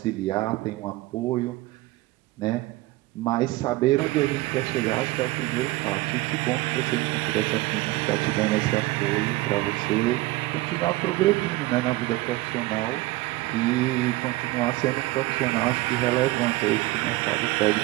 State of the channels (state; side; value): quieter; left; 19.8 dB